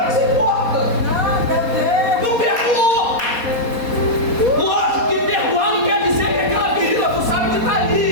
que importa. Não perdoou. Lógico que perdoar não quer dizer que aquela ferida tu sabe que está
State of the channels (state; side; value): late; left; 4.2 ms